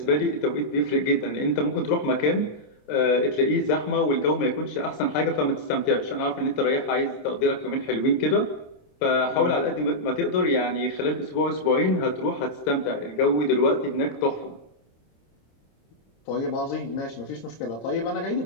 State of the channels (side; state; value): right; late; 26 ms